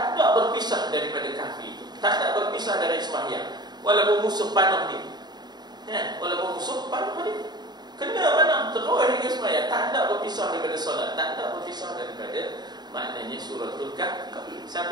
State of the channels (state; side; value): late; left; 0.20 ms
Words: ada berpisah daripada Kahfi itu, tak ada berpisah dari sembahyang, walaupun musuh panah dia, ya, walaupun musuh panah dia, kena mana terus hingga sembahyang, tak ada berpisah daripada solat, tak ada berpisah daripada maknanya suratul Kahfi,